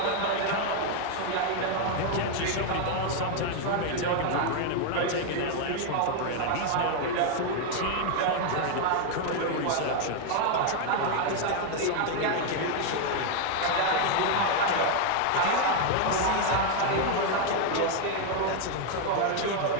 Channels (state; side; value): different; both; correlation 0.00